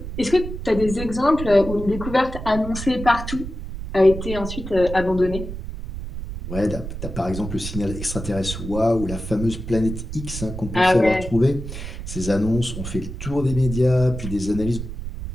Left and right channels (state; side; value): noise; right; rumble, 8 dB below the sound